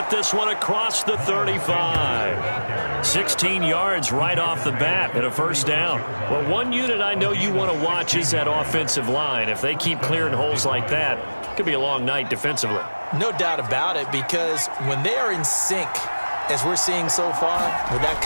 this one across the 35. 16 yards right off the bat and a first down. Well, one unit I know you want to watch is that offensive line. If they keep clearing holes like that, it could be a long night defensively. No doubt about it, because when they are in sync, as we're seeing so far, when that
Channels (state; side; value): inverted; both; correlation -1.00